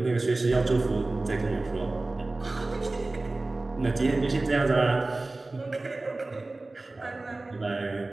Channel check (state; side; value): quieter; left; 3.1 dB